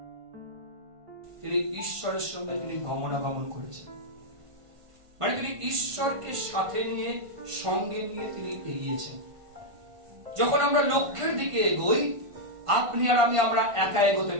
তিনি ঈশ্বরের সঙ্গে তিনি গমনাগমন করেছেন, মানে তিনি ঈশ্বরকে সাথে নিয়ে, সঙ্গে নিয়ে তিনি এগিয়েছেন। যখন আমরা লক্ষ্যের দিকে এগোই, আপনি আর আমি আমরা একা এগোতে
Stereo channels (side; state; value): left; late; 1.5 ms